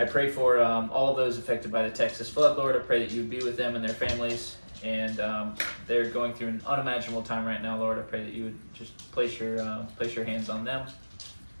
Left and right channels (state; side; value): inverted; both; correlation -1.00